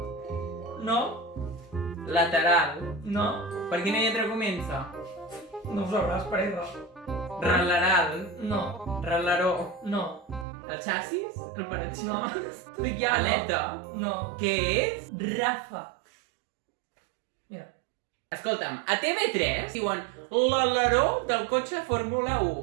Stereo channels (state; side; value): drops out; left; at 10.5 s